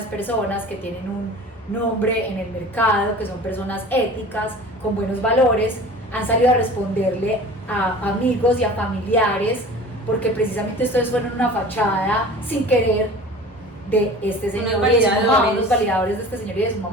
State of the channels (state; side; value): normal; both; correlation 0.40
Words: personas, que tienen un nombre en el mercado, que son personas éticas, con buenos valores, han salido a responderle a amigos y a familiares, porque precisamente ustedes fueron una fachada sin querer de este señor y de su mamá, los validadores de este señor y de su